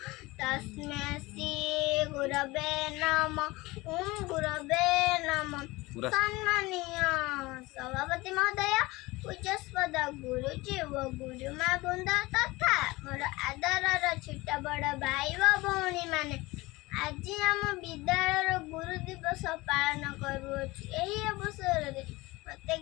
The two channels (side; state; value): right; quieter; 21.6 dB